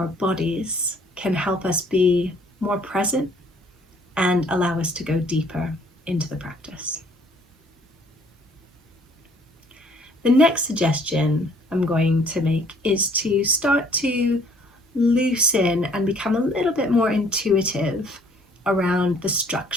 bodies, can help us be more present and allow us to go deeper into the practice. The next suggestion I'm going to make is to start to loosen and become a little bit more intuitive around the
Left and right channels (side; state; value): both; normal; correlation 0.59